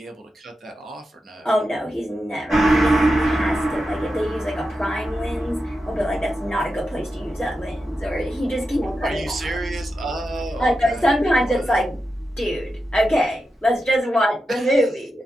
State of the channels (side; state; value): both; normal; correlation 0.89